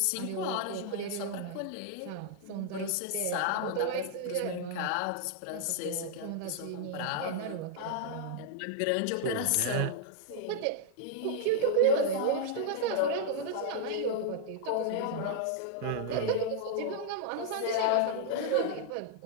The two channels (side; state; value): both; different; correlation -0.01